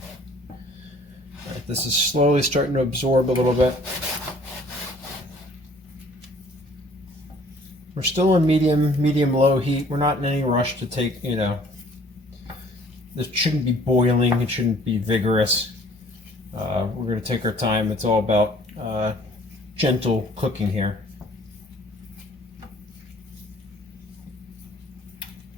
This is slowly starting to absorb a little bit. We're still on medium-low heat. We're not in any rush to take, this shouldn't be boiling. It shouldn't be vigorous. We're going to take our time. It's all about gentle cooking here.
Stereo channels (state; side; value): normal; both; correlation 0.55